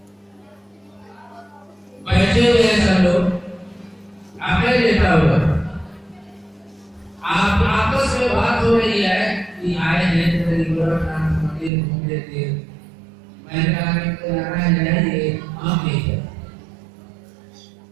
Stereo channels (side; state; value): left; drops out; at 11.7 s